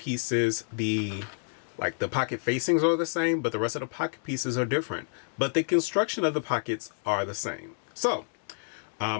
the pocket facings are the same, but the rest of the pocket pieces are different. But the construction of the pockets are the same. So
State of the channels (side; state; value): right; silent; digital silence